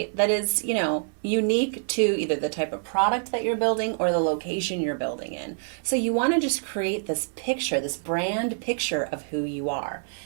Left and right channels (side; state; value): left; silent; 61 dB below the other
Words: that is, unique to either the type of product that you're building or the location you're building in. So you want to just create this picture, this brand picture of who you are.